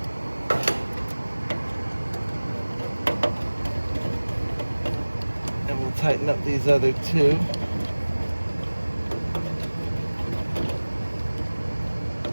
And we'll tighten up these other two.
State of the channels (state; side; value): inverted; both; correlation -1.00